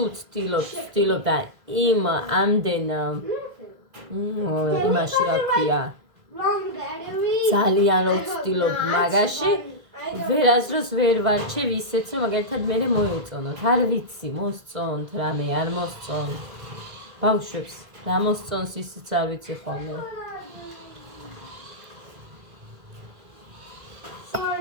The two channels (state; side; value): late; left; 2.0 ms